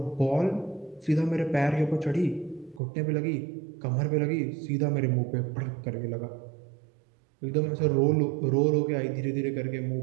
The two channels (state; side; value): drops out; left; at 2.8 s